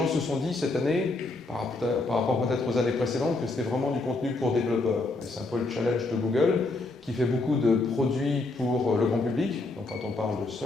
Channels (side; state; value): right; quieter; 3.2 dB